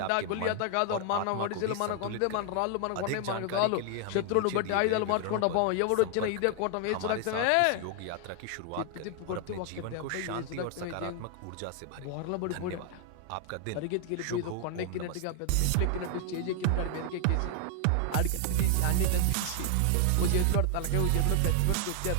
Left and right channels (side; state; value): both; different; correlation 0.00